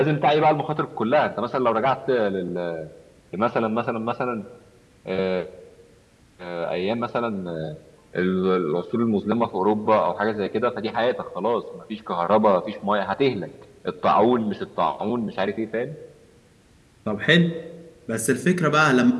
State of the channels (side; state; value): both; identical; correlation 1.00